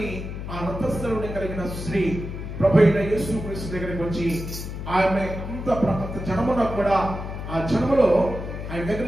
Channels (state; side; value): noise; left; hum, 7 dB below the sound